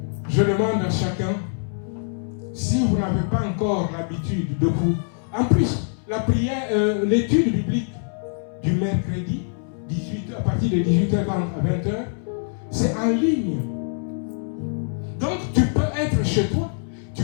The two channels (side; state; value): right; silent; 63 dB below the other